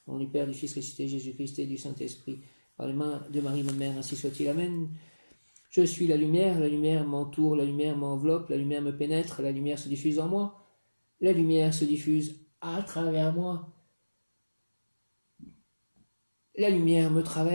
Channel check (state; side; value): inverted; both; correlation -1.00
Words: Au nom du Père, du Fils ressuscité, Jésus-Christ et du Saint-Esprit, par les mains de Marie, ma mère, ainsi soit-il. Amen. Je suis la lumière m'entoure, la lumière m'enveloppe, la lumière me pénètre, la lumière se diffuse en moi, la lumière se diffuse à travers moi. La lumière me